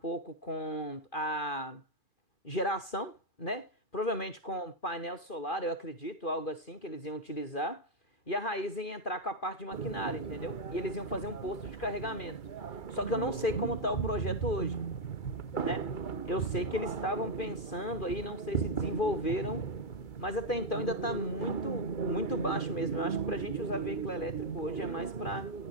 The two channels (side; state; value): right; late; 2.4 ms